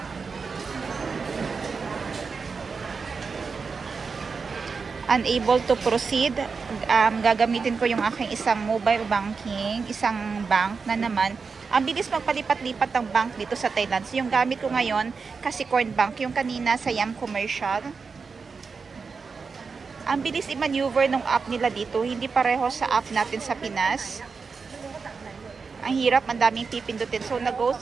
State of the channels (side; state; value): left; quieter; 5.0 dB